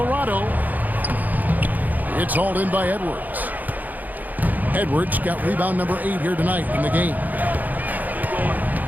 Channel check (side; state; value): left; late; 0.082 ms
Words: It's hauled in by Edwards. Edwards got rebound number 8 here tonight in the game.